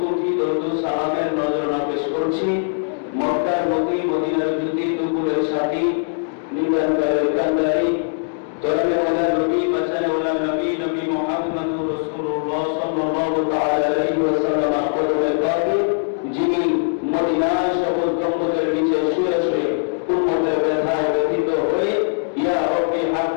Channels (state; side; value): silent; right; digital silence